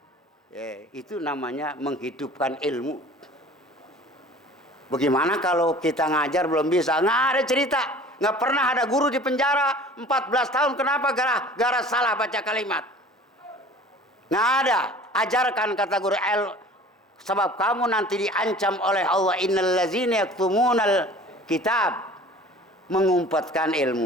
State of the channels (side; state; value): both; normal; correlation 0.45